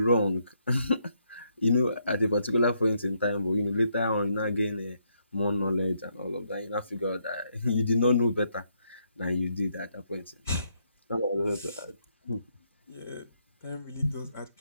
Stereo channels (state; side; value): inverted; both; correlation -0.75